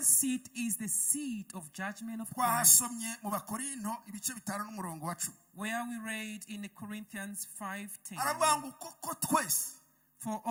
seat is the seat of judgment of Christ, Twasomye mu Bakorinto ibice 5 n'umurongo wa 10. where we read in Corinthians 5:10. Aravuga ngo koko twese For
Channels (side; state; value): both; identical; correlation 1.00